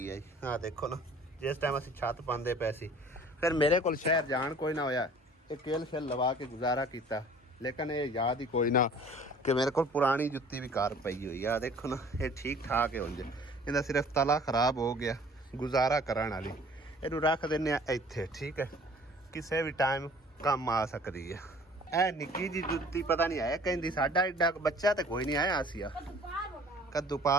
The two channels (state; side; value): normal; both; correlation 0.51